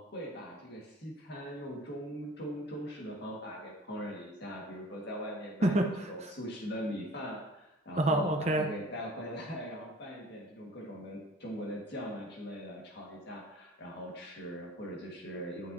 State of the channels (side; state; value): both; normal; correlation 0.47